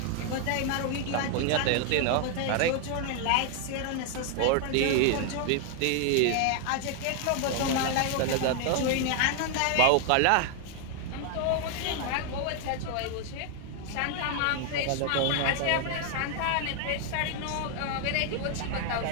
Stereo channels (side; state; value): both; different; correlation 0.00